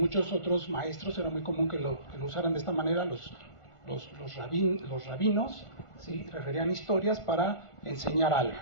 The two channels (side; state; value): right; late; 1.4 ms